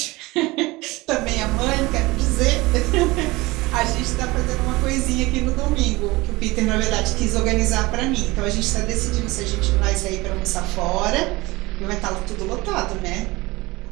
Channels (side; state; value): left; quieter; 21.6 dB